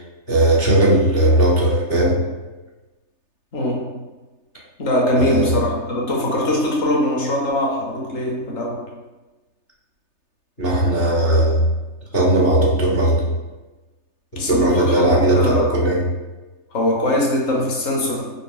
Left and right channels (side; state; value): right; late; 3.3 ms